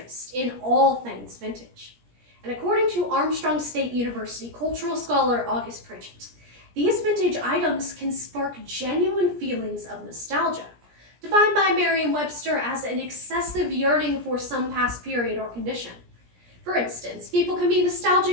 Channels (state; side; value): late; left; 17 ms